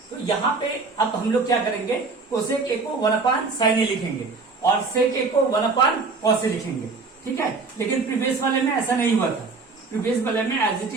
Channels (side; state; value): left; quieter; 4.2 dB